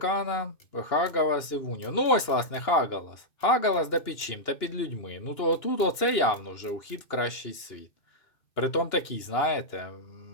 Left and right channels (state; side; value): late; right; 2.9 ms